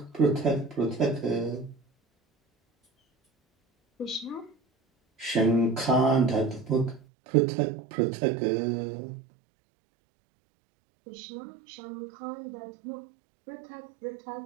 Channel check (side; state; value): left; drops out; at 7.0 s